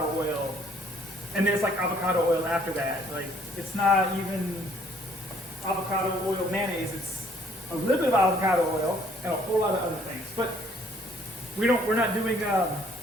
oil, and then it's like avocado oil after that. Like it's not even avocado oil mayonnaise. It's a little bit of avocado oil and a whole lot of other things. But we're not doing keto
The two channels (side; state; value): both; normal; correlation 0.62